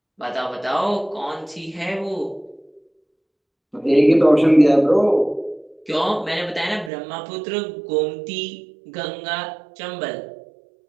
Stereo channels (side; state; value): left; drops out; at 6.9 s